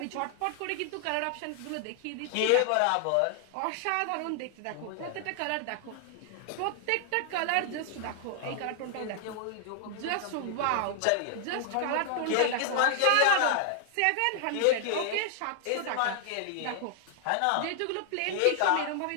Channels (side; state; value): both; different; correlation 0.00